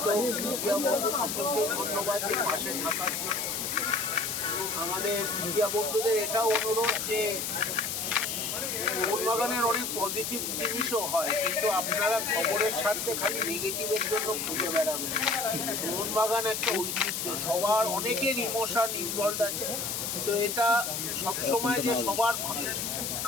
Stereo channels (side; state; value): left; noise; hiss, 2 dB below the sound